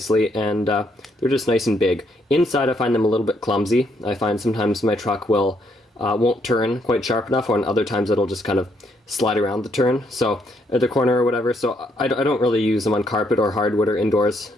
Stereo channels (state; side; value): normal; both; correlation 0.73